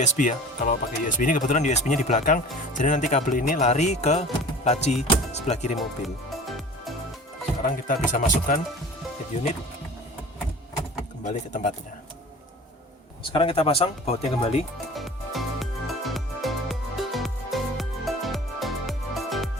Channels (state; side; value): normal; both; correlation 0.42